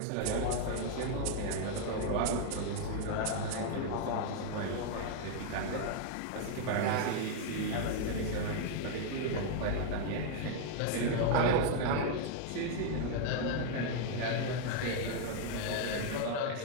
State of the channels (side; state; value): both; different; correlation 0.00